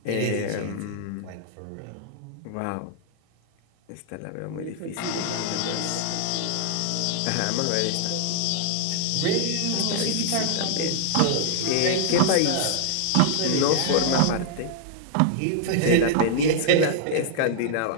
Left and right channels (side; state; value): both; different; correlation -0.01